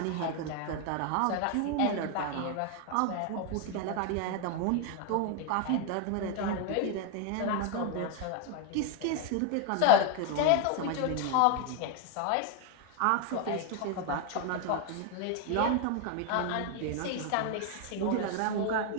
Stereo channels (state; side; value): different; both; correlation 0.01